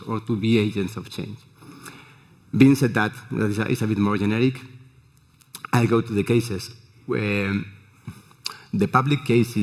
or to be agents of change. Being said that is a bit more generic, I'll go to the cases. The public case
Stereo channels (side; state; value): both; identical; correlation 1.00